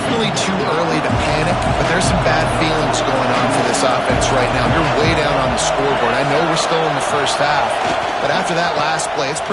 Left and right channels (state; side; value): identical; both; correlation 1.00